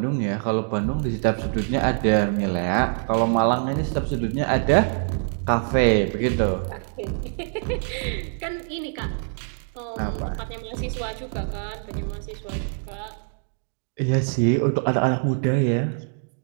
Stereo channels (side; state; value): left; silent; digital silence